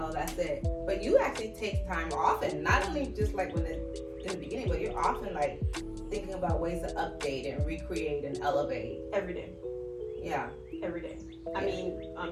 that's it. But you actually take time often, not only just like in the beginning, but you're often like thinking about ways to update and recreate and elevate. Every day. Yeah. Every day. I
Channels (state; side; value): identical; both; correlation 1.00